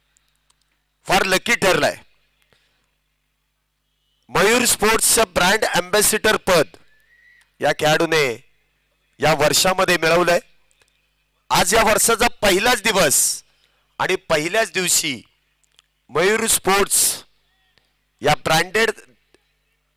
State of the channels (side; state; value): both; identical; correlation 1.00